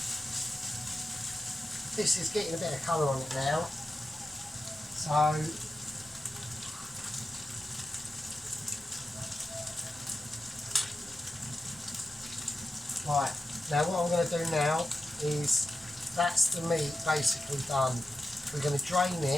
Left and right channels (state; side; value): normal; both; correlation 0.91